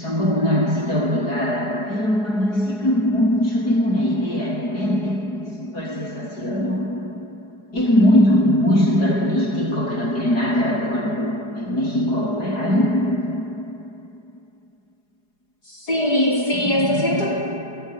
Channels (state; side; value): late; right; 4.8 ms